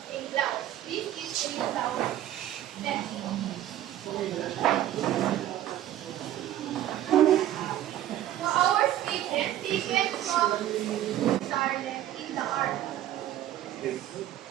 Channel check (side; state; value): left; quieter; 12.6 dB